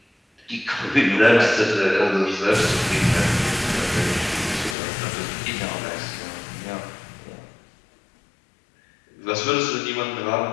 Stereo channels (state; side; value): drops out; right; at 4.8 s